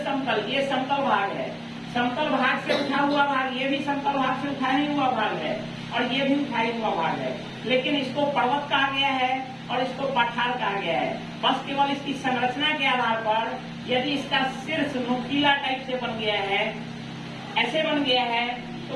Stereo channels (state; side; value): identical; both; correlation 1.00